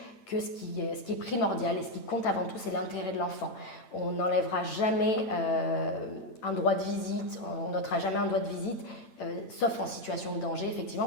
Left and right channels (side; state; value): right; late; 8.9 ms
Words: que ce qui est primordial et ce qui compte avant tout, c'est l'intérêt de l'enfant. On n'enlèvera jamais un droit de visite, on n'ôtera jamais un droit de visite, sauf en situation de danger,